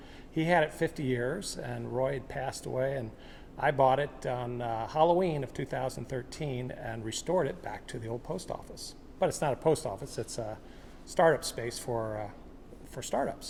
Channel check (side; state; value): both; identical; correlation 1.00